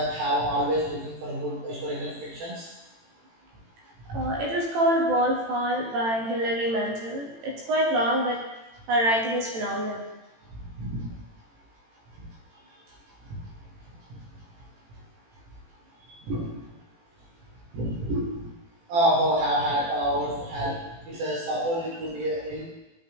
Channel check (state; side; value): late; left; 18 ms